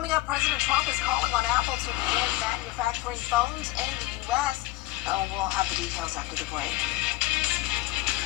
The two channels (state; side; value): quieter; right; 18.9 dB